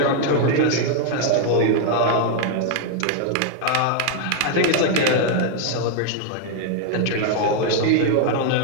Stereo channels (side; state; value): both; different; correlation 0.00